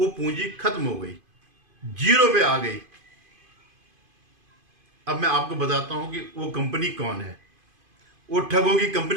पूंजी खत्म हो गई, जीरो पे आ गई। अब मैं आपको बताता हूं कि वो कंपनी कौन है, वो ठगों की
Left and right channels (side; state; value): left; late; 2.5 ms